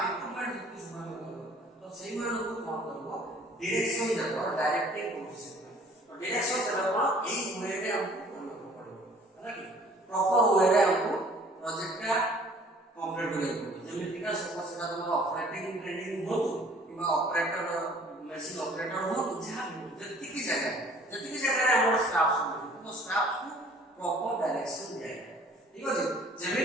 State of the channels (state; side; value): normal; both; correlation 0.53